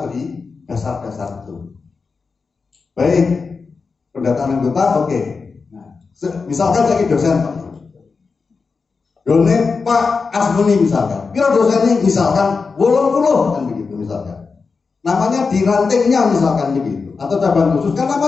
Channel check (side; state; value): right; quieter; 4.7 dB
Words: beri dasar-dasar itu. Baik, pendataan anggota, oke. Nah, misalkan saya dosen, Pak. Done Pak Asmuni misalkan, kira dosen ini misalkan 80 kan begitu misalkan. Namanya di rantingnya misalkan begitu, atau cabang khusus kan